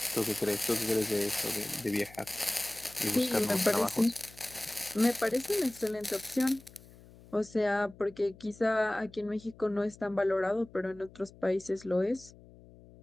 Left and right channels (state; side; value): noise; left; hum, 22 dB below the sound